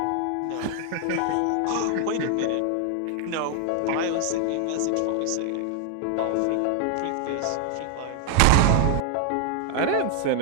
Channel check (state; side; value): different; both; correlation 0.00